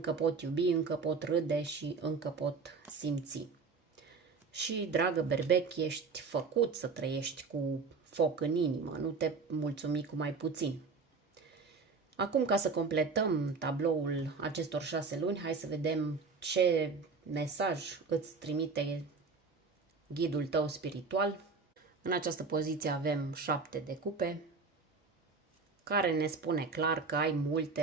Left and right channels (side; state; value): left; quieter; 4.6 dB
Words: pot iubi, încă pot râde și încă pot simți. Și, dragă berbec, ești făcut să trăiești cu foc în inimă, nu te mulțumi cu mai puțin. Acum, ca să completăm tabloul acestor 6 luni, hai să vedem ce mesaj îți trimite ghidul tău spiritual. În această poziție avem 7 de cupe, care ne spune clar că ai